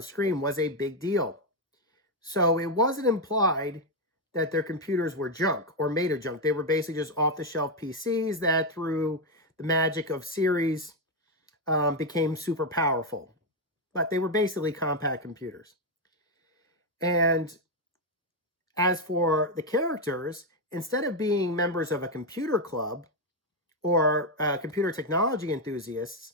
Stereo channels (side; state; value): both; normal; correlation 0.05